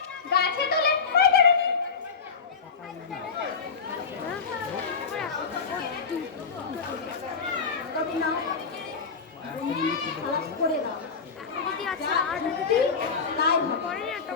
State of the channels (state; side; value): quieter; right; 5.4 dB